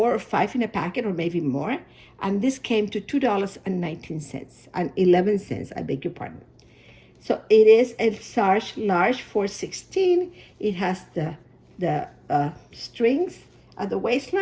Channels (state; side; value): identical; both; correlation 1.00